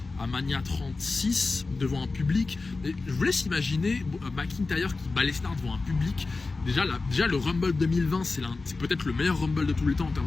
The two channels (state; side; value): quieter; right; 3.8 dB